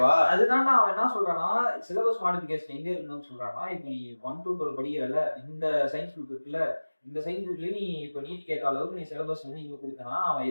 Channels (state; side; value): inverted; both; correlation -1.00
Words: அதுதான் அவன் என்ன சொல்றான்னா சிலபஸ் மாடிஃபிகேஷன் எங்க இருக்கணும்னு சொல்றான்னா இப்ப நீ 1 to 12 படிக்கிறல இந்த சயின்ஸ் குரூப் இருக்குல்ல இந்த சயின்ஸ் குரூப்லயே நீ இப்ப நீட் கேட்ட அளவுக்கு நீ சிலபஸ் வந்து இங்க கொடுத்தனா அவன்